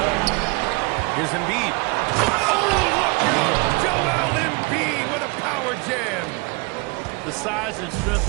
Here's Embiid. Oh, look out! Joel Embiid with a power jam. The size and strength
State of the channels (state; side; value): quieter; left; 28.2 dB